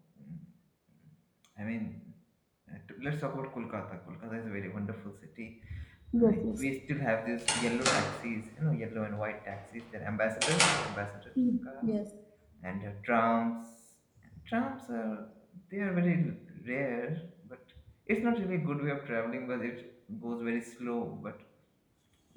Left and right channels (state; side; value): identical; both; correlation 1.00